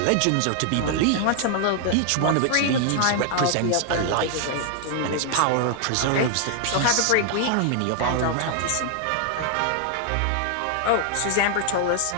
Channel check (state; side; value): different; both; correlation 0.00